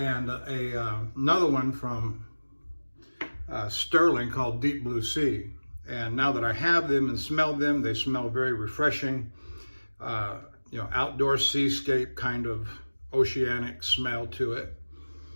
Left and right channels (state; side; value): inverted; both; correlation -1.00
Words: another one from Sterling called Deep Blue Sea. And now that I have them and smelled them, they smell very refreshing, outdoor seascape kind of oceanic smell to it.